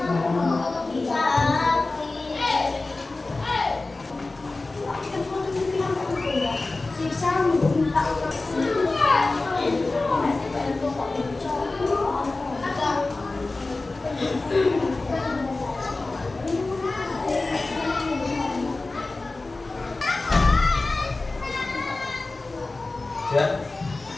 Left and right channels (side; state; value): right; quieter; 3.3 dB